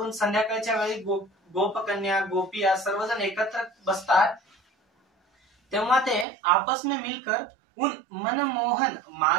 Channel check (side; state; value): left; drops out; at 6.2 s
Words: संध्याकाळच्या वेळी गोपकन्या गोपिया सर्वजण एकत्र बसतात, तेव्हा ते आपस में मिलकर उन मनमोहन